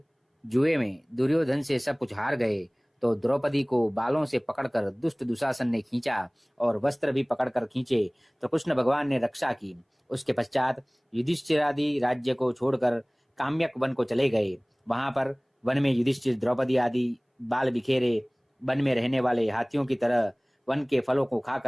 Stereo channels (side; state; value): both; identical; correlation 1.00